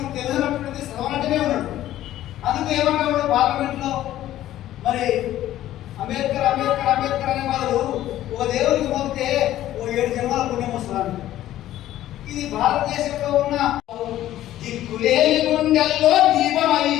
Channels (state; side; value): quieter; right; 13.5 dB